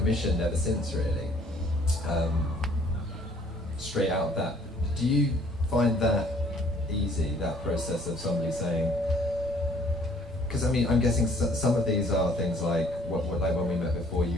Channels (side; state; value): both; normal; correlation 0.59